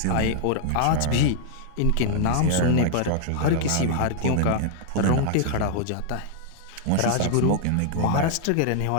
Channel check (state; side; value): different; both; correlation 0.00